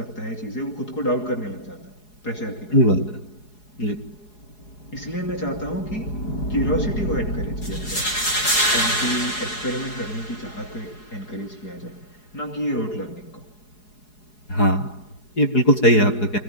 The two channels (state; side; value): late; right; 4.8 ms